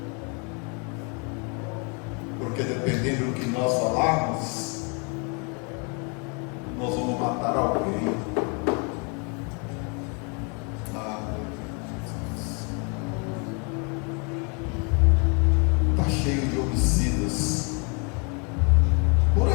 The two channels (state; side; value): quieter; right; 35.2 dB